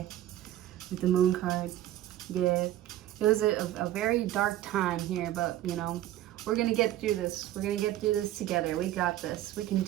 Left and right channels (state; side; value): quieter; left; 13.7 dB